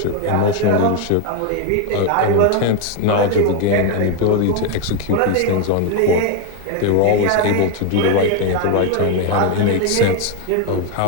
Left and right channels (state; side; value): different; both; correlation 0.01